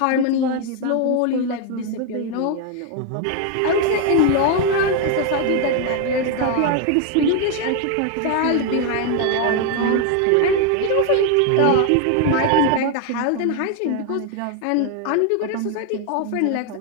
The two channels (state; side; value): different; both; correlation 0.01